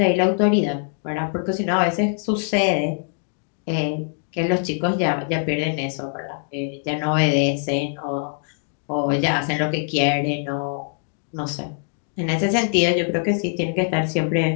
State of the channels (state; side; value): silent; right; 56 dB below the other